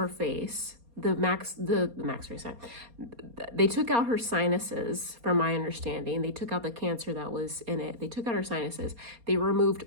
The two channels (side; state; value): left; late; 4.2 ms